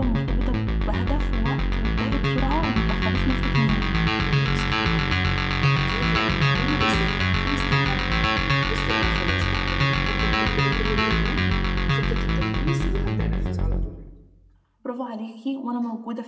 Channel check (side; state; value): both; identical; correlation 1.00